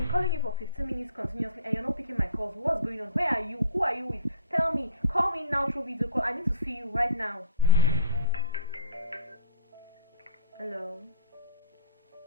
calling you for 15 minutes continuously and you're not picking my calls. What's going on? Where are you? Who are you with? Tell me. Call me now through video call. I need to see you right now. Hello?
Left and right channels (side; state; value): both; inverted; correlation -0.48